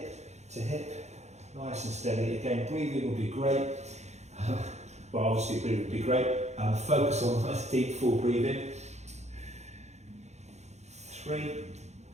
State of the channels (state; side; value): late; left; 0.33 ms